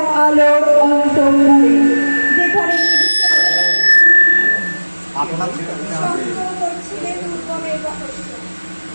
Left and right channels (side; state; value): both; inverted; correlation -1.00